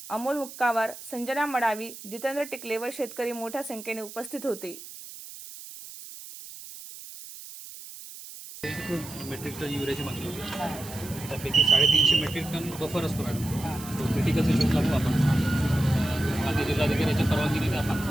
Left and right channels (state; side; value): noise; right; hiss, 14 dB below the sound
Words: अमोल मुक्कावार, संजना मडावी, जितेंद्र टिकले व शेतकरी मोठ्या संख्येने उपस्थित होते। मेट्रिक टन युरियाची मागणी होती, त्यापैकी 350 मेट्रिक टन बफर असतो मॅडम, तो क्रिटिकल सिच्युएशन लागतो आपण मागे जिल्हाधिकाऱ्याच्या परवानगीने आपण